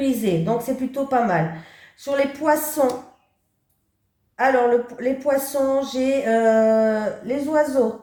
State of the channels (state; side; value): identical; both; correlation 1.00